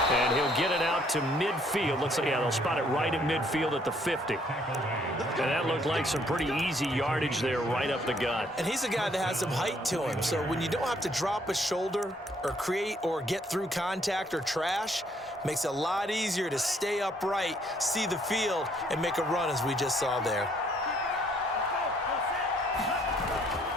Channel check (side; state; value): both; normal; correlation 0.66